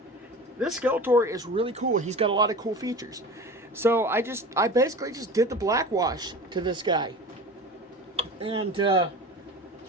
This Skeletor is really cool. He's got a lot of cool features. So I basically just did the black wash to this guy. And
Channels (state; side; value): normal; both; correlation 0.35